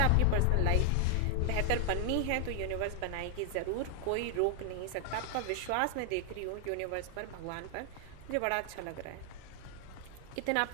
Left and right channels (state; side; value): different; both; correlation 0.00